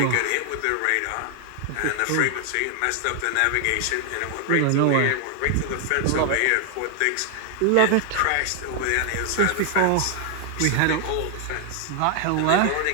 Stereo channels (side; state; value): both; different; correlation 0.00